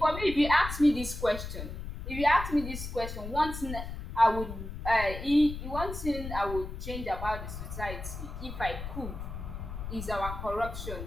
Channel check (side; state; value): left; noise; rumble, 8 dB below the sound